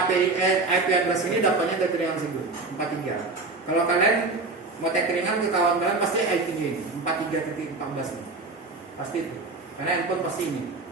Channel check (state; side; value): quieter; left; 3.6 dB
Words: IP address ini dapatnya tagringan si Gun 43. Kalau kalian mau tagringan ke kawan kalian pasti IP-nya ini 43.14 ini. Pasti itu. Karena handphone pasti ini.